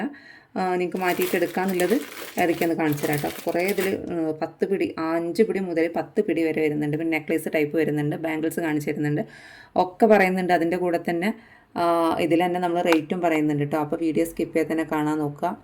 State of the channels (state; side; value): identical; both; correlation 1.00